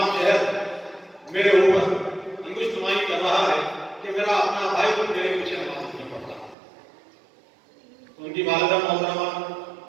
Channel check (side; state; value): left; drops out; at 6.6 s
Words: شہر میرے اوپر انگشت نمائی کر رہا ہے کہ میرا اپنا بھائی کو میرے پیچھے نماز نہیں پڑھتا. ان کی والدہ محترمہ